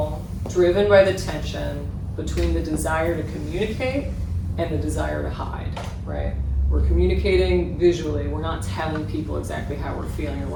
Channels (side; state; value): both; identical; correlation 1.00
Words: driven by the tension between the desire to communicate and the desire to hide, right? We're communicating visually, we're not telling people exactly how we're feeling